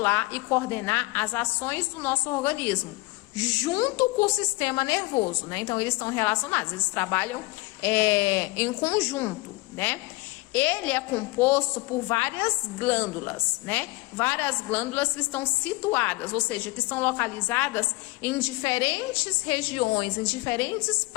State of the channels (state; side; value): quieter; right; 22.7 dB